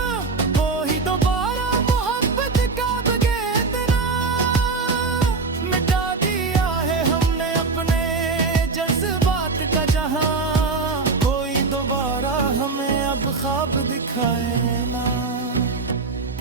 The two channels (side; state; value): left; quieter; 4.2 dB